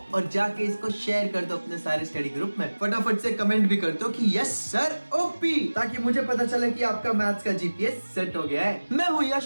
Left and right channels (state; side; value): inverted; both; correlation -1.00